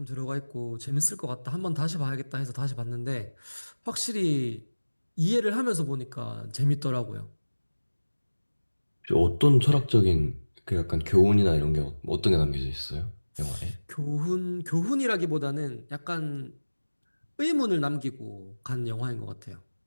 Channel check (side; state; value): both; inverted; correlation -1.00